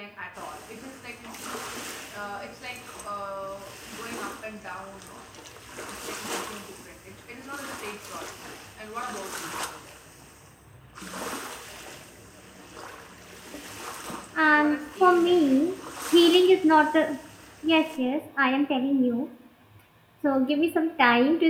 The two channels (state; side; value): identical; both; correlation 1.00